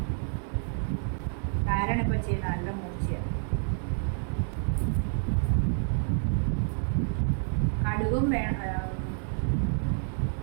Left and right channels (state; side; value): silent; left; 59 dB below the other